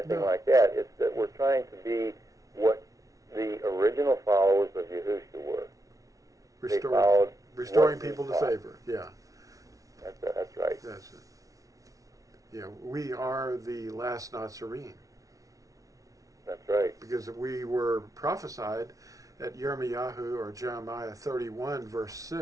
like that. It's that we're trying to be what the original followers of Yahusha were. Restoring people to favor. Yeah. That's right. That's it. Yeah, we are the last Natsarim. That's right. Because we were prophesied at Yirmiyahu or Jeremiah 31 verse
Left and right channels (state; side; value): late; left; 0.17 ms